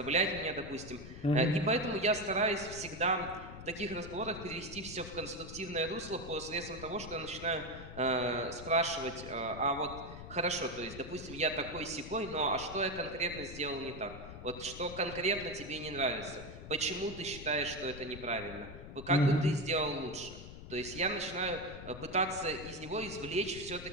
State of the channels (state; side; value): noise; left; rumble, 12 dB below the sound